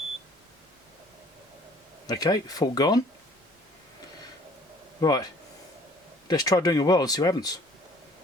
Okay, fault gone. Right, let's try doing a weld and see what happens.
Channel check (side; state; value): both; normal; correlation 0.55